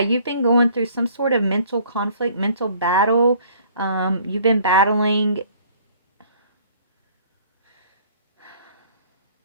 been going through some sort of mental conflict, mental battle. You've been battling.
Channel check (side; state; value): both; inverted; correlation -0.56